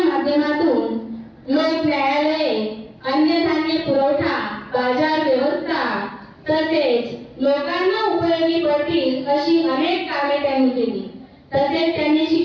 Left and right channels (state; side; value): identical; both; correlation 1.00